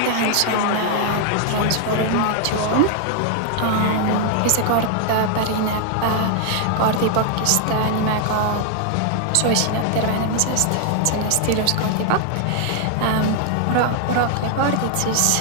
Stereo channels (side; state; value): both; different; correlation 0.00